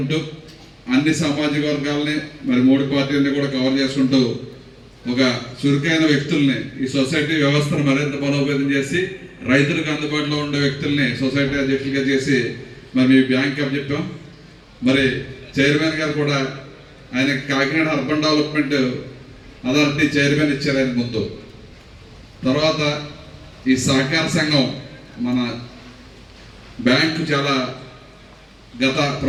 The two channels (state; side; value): identical; both; correlation 1.00